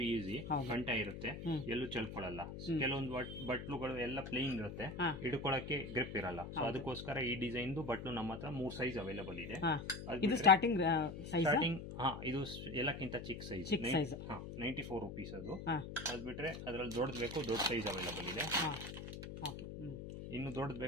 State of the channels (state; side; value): noise; left; hum, 9 dB below the sound